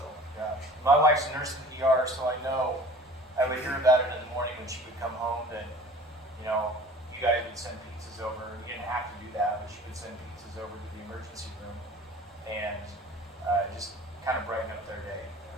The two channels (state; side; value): normal; both; correlation 0.44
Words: Yeah. My wife's a nurse in the ER, so I know. I would hear about it in the morning when she would come home that, you guys would send pizzas over. You didn't have to do that, but she would send pizzas over to the emergency room and just kind of brighten up their day.